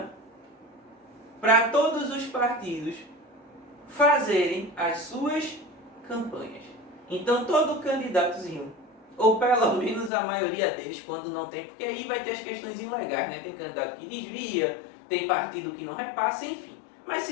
para todos os partidos fazerem as suas campanhas. Então todo candidatozinho, ou pelo menos a maioria deles, quando não tem, porque aí vai ter as questões ilegais, né? Tem candidato que desvia, tem partido que não repassa, enfim. Mas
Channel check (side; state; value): right; drops out; at 10.1 s